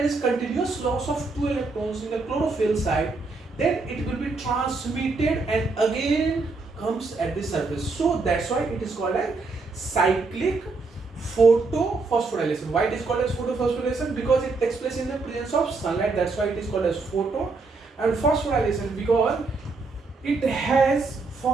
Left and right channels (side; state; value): left; quieter; 3.9 dB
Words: is continuous loss of 2 electrons in the chlorophyll side, then it will be transmitted and again comes at the surface. So that's why it is called as cyclic photophosphorylation. Why it is called as photophosphorylation? Because it takes place in the presence of sunlight. That's why it is called as photo. And phosphorylation because it has